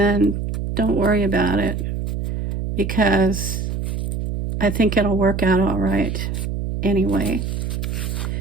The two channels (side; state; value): right; noise; hum, 3 dB below the sound